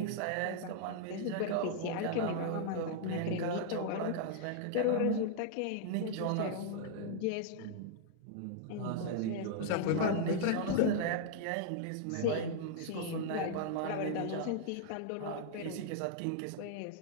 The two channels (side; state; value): both; different; correlation -0.01